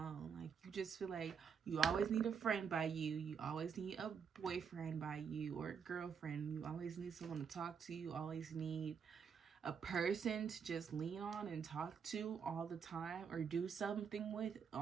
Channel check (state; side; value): quieter; left; 6.7 dB